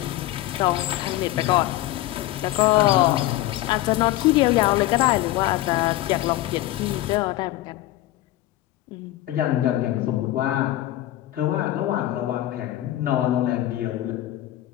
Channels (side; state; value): right; quieter; 15.4 dB